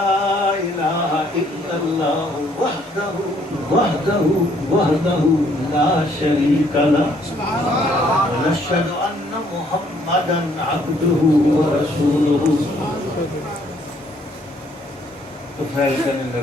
إله إلا الله وحده لا شريك له ونشهد أن محمدا عبده ورسوله۔ تو فیل کرنے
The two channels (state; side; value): normal; both; correlation 0.65